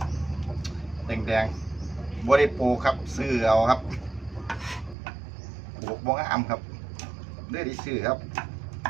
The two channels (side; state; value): left; drops out; at 5.0 s